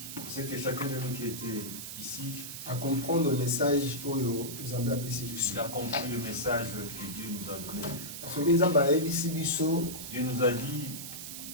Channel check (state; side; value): noise; right; hiss, 8 dB below the sound